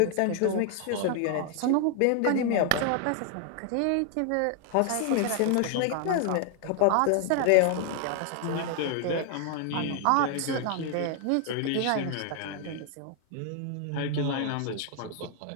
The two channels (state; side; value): different; both; correlation 0.00